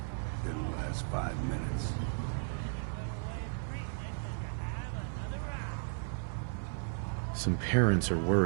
Didn't last 5 minutes. Some parents are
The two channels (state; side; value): silent; left; 55 dB below the other